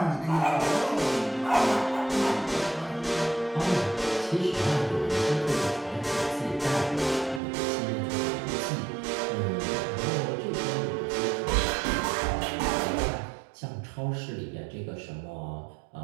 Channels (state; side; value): drops out; left; at 7.4 s